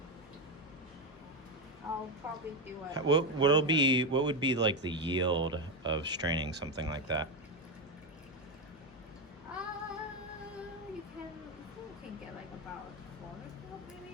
I'll probably do it. What would be like the yield of straining something like that? You can get like about a quarter cup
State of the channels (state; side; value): normal; both; correlation 0.10